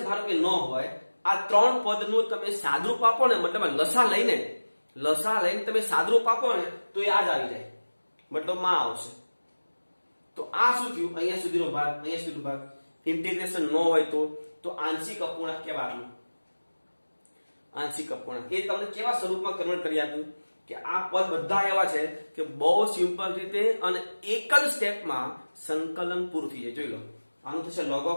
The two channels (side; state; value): both; inverted; correlation -1.00